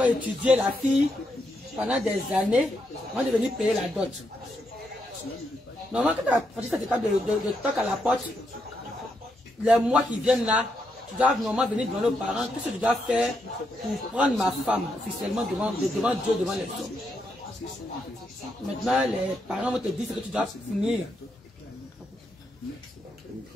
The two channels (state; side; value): normal; both; correlation 0.81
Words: étudier la fille pendant des années. On va devenir payer la dot. Normalement, quand tu as franchi cette étape de toc à la porte, les mois qui viennent là, tu dois normalement venir devant nos parents. Qu'est-ce que tu dois faire pour prendre ma femme officiellement devant Dieu, devant les hommes? Maintenant, les parents vont te dire que tu dois finir. Une